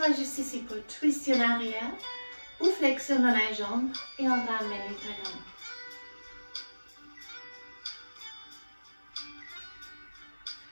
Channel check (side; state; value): both; inverted; correlation -1.00